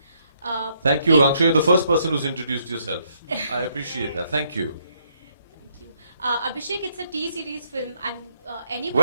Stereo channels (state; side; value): inverted; both; correlation -0.72